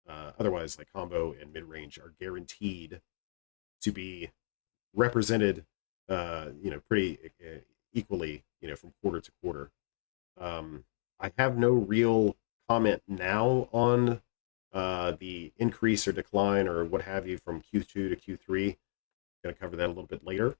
Otherwise, like combo and mid-range are guaranteed to be represented, pretty equally, from quarter to quarter. I have no real comment now on the increase or decline or what have you from Q2 to Q3. Going to cover that a little bit later.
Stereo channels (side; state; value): right; silent; digital silence